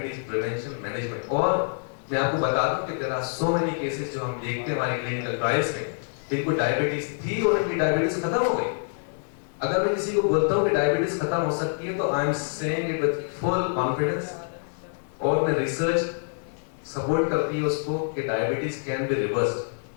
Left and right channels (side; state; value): right; silent; 61 dB below the other